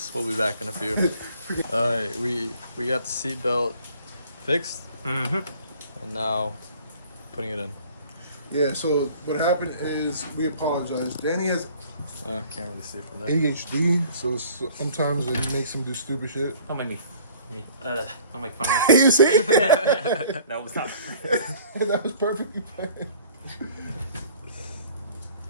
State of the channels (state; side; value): inverted; both; correlation -0.52